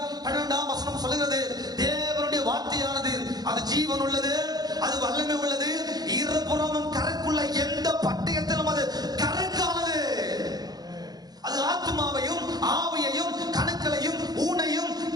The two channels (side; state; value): left; late; 0.19 ms